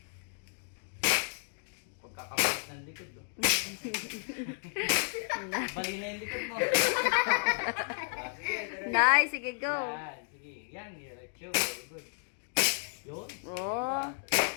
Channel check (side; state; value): right; silent; 56 dB below the other